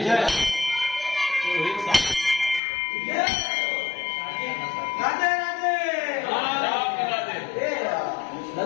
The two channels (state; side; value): drops out; right; at 2.6 s